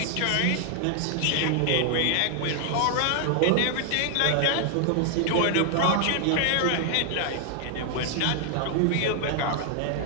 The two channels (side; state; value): both; different; correlation 0.00